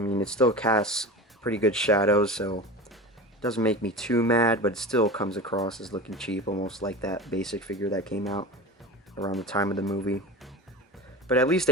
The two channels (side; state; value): both; normal; correlation 0.30